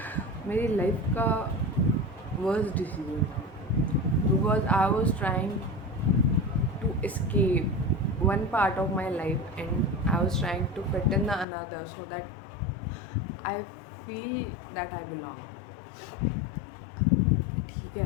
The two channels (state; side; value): drops out; right; at 11.5 s